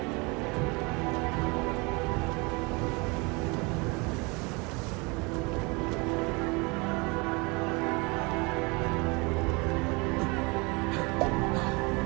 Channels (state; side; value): quieter; left; 28.0 dB